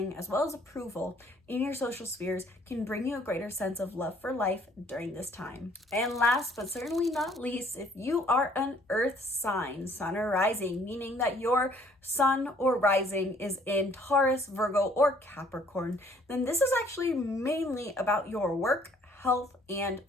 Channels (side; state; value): both; normal; correlation 0.61